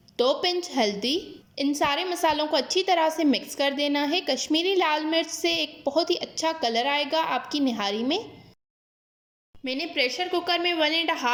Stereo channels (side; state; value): both; identical; correlation 1.00